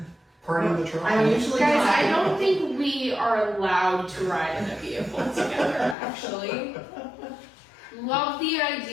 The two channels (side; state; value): right; drops out; at 6.0 s